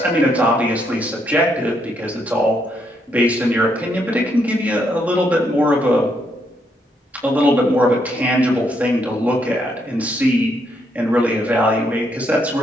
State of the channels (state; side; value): normal; both; correlation 0.75